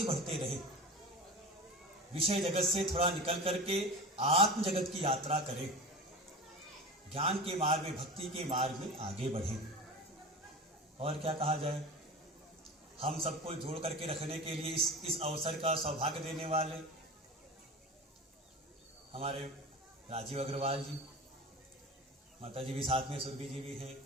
बढ़ते रहें, विषय जगत से थोड़ा निकल करके आत्म जगत की यात्रा करें, ज्ञान के मार्ग में, भक्ति के मार्ग में आगे बढ़ें। और क्या कहा जाए, हम सबको जोड़ करके रखने के लिए इस अवसर का सौभाग्य देने वाले हमारे राजीव अग्रवाल जी, माता जी भी साथ में, सुरभि जी भी हैं,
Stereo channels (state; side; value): normal; both; correlation 0.32